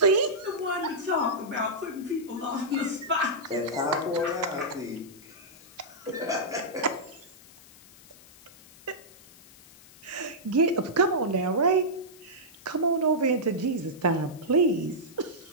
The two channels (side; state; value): left; noise; hiss, 23 dB below the sound